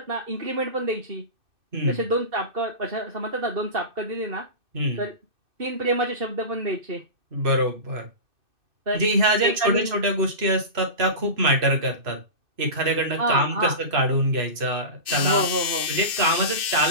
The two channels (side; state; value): left; late; 2.6 ms